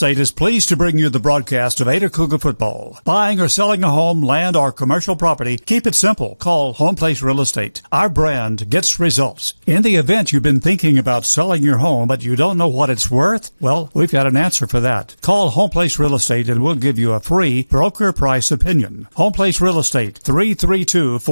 is pleased to bring you the broadcast of Ada Cougar football. Buying or selling a home, land, or commercial property, keep it simple. Call Home Place Real Estate. Our brand gets results. In the event you've been thinking about selling your home, but you don't know what it's worth, well, we've got an answer for that. Call Home Place Real Estate and we'll give you a free broker price opinion. Home Place Real Estate,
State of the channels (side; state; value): both; inverted; correlation -1.00